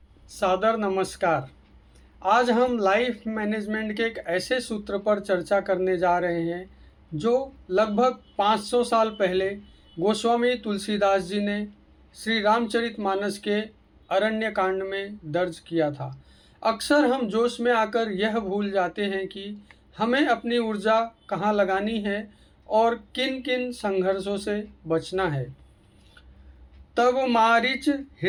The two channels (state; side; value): identical; both; correlation 1.00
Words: सादर नमस्कार। आज हम लाइफ मैनेजमेंट के एक ऐसे सूत्र पर चर्चा करने जा रहे हैं जो लगभग 500 साल पहले गोस्वामी तुलसीदास जी ने श्री रामचरितमानस के अरण्य कांड में दर्ज किया था। अक्सर हम जोश में आकर यह भूल जाते हैं कि हमें अपनी ऊर्जा कहाँ लगानी है और किन किन संघर्षों से बचना है। तब मारिच